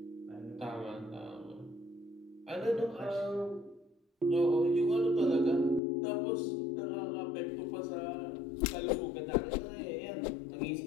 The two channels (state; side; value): drops out; right; at 5.8 s